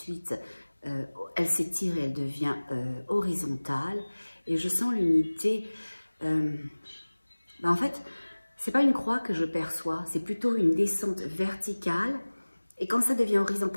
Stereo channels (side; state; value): both; inverted; correlation -1.00